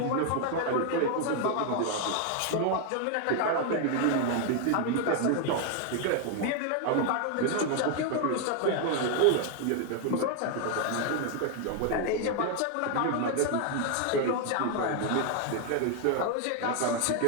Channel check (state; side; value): different; both; correlation 0.00